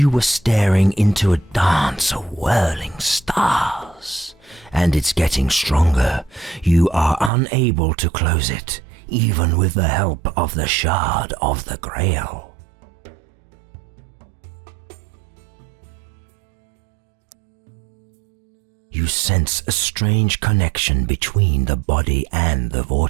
were staring into a dance of whirling stars. And it's getting stronger. You are unable to close it, even with the help of the Shard of the Grail. You sense a strange connection between the body and the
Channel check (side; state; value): left; drops out; at 7.3 s